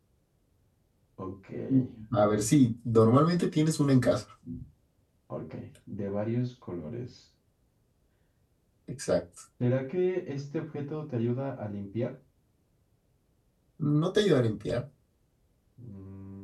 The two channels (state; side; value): identical; both; correlation 1.00